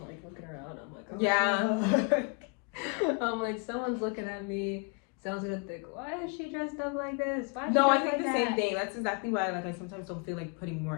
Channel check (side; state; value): right; quieter; 33.7 dB